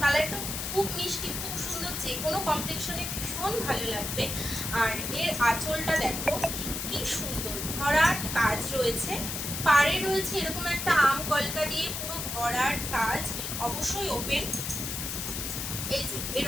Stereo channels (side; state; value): left; noise; hiss, 4 dB below the sound